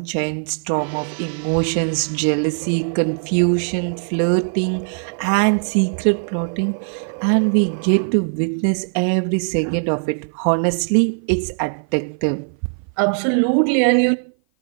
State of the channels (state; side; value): silent; left; 56 dB below the other